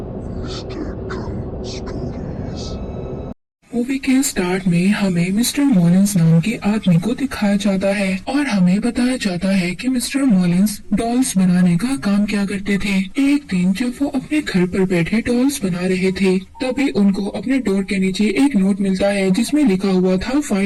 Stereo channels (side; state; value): both; identical; correlation 1.00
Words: मूवी के स्टार्ट में हमें मिस्टर मॉलिंस नाम के आदमी को दिखाया जाता है और हमें बताया जाता है कि मिस्टर मॉलिंस डॉल्स बनाने का काम किया करते थे। एक दिन जब वो अपने घर पर बैठे डॉल्स बना रहे थे, तभी उनको अपने डोर के नीचे एक नोट मिलता है जिसमें लिखा हुआ था